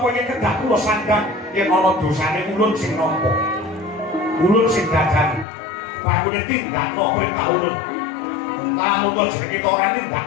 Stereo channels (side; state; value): right; drops out; at 5.5 s